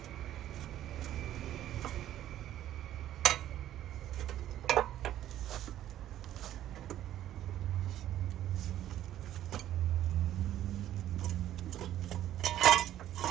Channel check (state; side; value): quieter; left; 12.3 dB